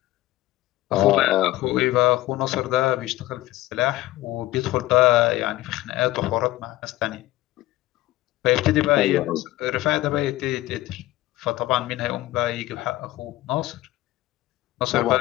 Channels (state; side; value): quieter; right; 17.0 dB